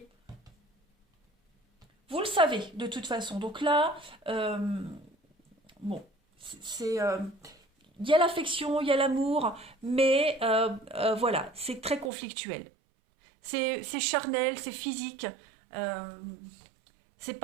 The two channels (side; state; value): left; drops out; at 12.1 s